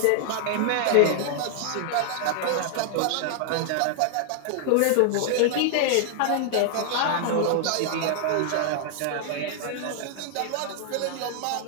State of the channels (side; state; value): both; different; correlation 0.00